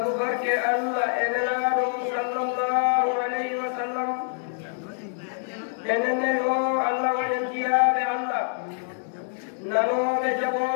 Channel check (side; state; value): right; silent; digital silence